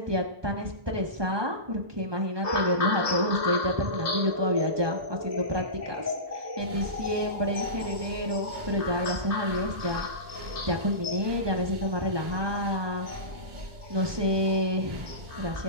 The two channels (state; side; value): late; left; 1.2 ms